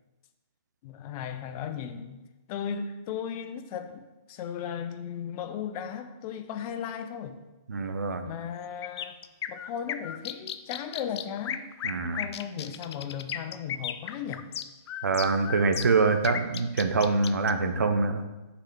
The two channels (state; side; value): inverted; both; correlation -0.46